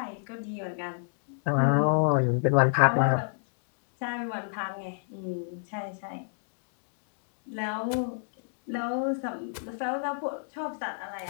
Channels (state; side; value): silent; right; digital silence